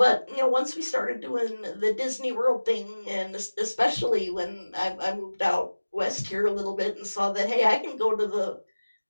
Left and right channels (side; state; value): both; inverted; correlation -1.00